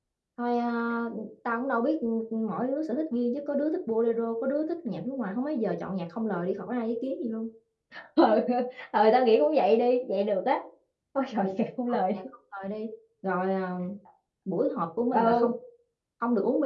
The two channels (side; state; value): both; identical; correlation 1.00